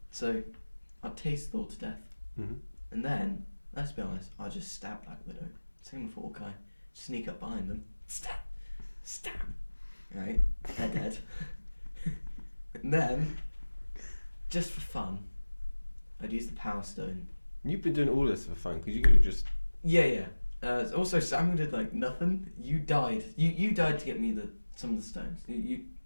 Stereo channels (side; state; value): both; inverted; correlation -1.00